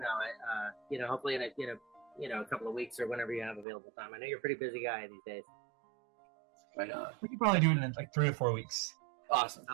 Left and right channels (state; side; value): drops out; left; at 3.7 s